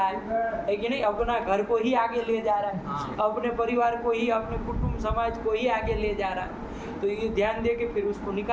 है कि नहीं, अपना घर को ही आगे ले जा रहा है, अपने परिवार को ही, अपने कुटुंब समाज को ही आगे ले जा रहा है। तो ये ध्यान दे के फिर उसको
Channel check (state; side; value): identical; both; correlation 1.00